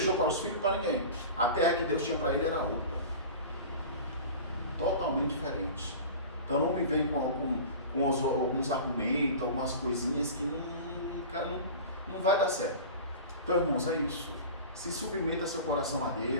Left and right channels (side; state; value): both; inverted; correlation -0.35